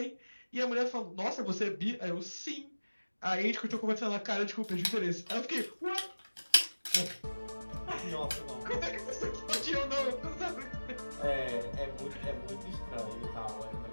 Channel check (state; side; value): inverted; both; correlation -1.00